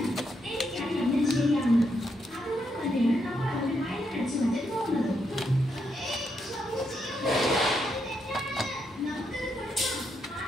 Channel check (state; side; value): normal; both; correlation 0.80